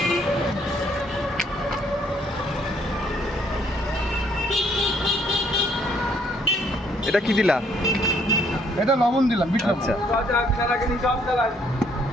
এটা কি দিলা? এটা লবণ দিলাম, বিট লবণ। আচ্ছা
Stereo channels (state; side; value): normal; both; correlation 0.67